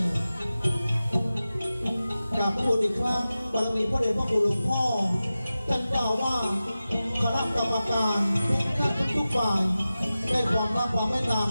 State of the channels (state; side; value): inverted; both; correlation -0.94